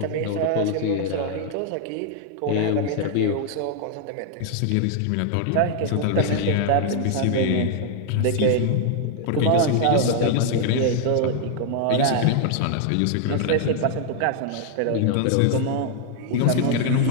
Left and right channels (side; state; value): both; different; correlation -0.01